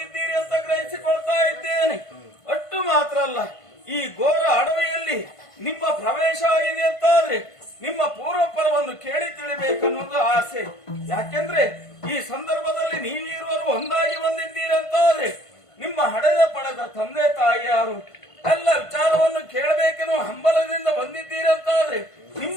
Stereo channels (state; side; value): late; right; 1.5 ms